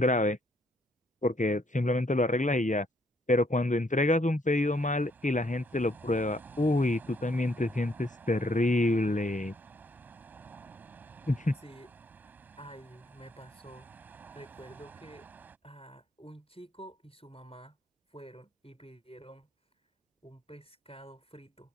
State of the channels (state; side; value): normal; both; correlation 0.70